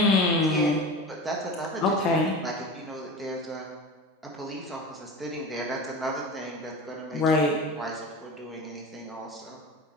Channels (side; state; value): both; normal; correlation 0.31